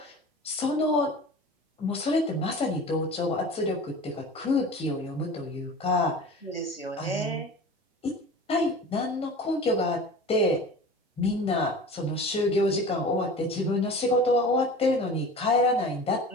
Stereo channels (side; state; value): both; normal; correlation 0.37